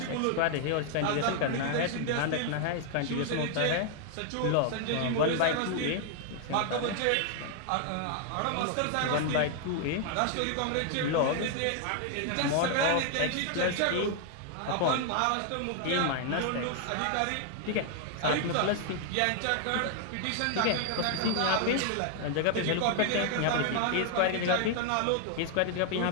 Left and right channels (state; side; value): different; both; correlation 0.00